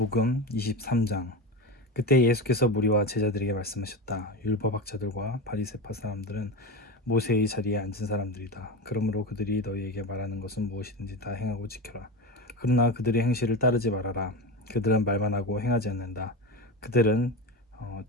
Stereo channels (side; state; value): both; normal; correlation 0.22